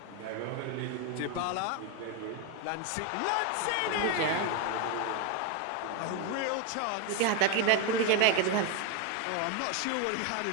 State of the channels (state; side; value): different; both; correlation 0.02